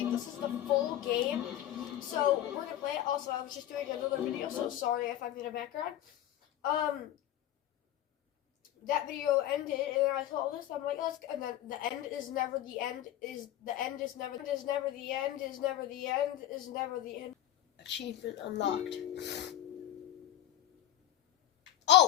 this is the full game, so we're gonna play it. Also, I was just doing another video, so sorry if I'm in the background. That video ended, and I saw this. I'm like, let's. And then the end is never the end. Is the end is never the end. Is never the end. Is never the end. Achievement unlocked.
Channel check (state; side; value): quieter; right; 12.5 dB